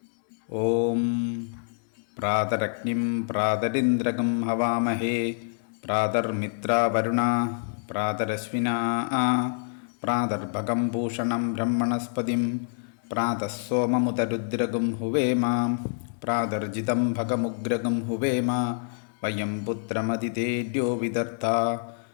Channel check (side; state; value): right; silent; digital silence